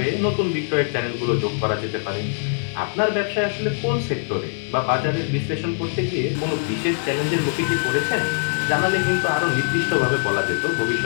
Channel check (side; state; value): right; silent; digital silence